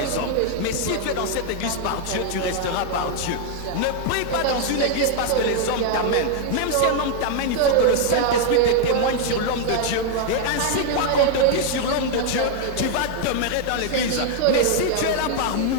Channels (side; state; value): both; different; correlation 0.00